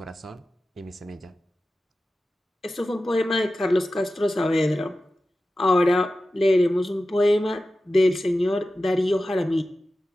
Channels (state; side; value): normal; both; correlation 0.94